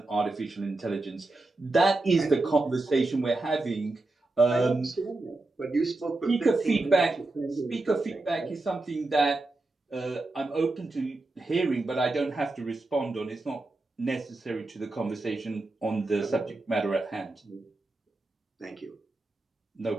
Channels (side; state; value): left; quieter; 3.0 dB